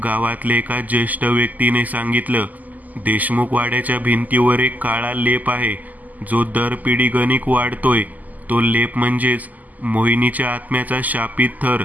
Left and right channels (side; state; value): left; late; 0.081 ms